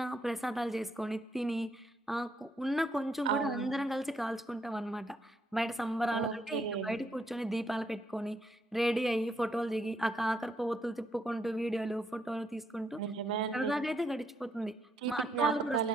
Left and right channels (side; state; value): both; normal; correlation 0.75